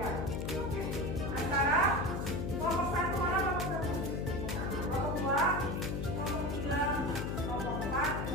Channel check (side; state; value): left; noise; hum, 2 dB below the sound